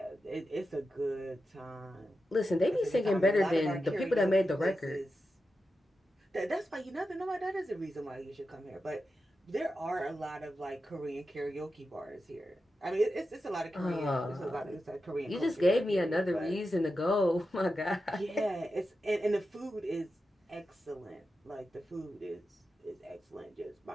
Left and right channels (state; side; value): normal; both; correlation 0.90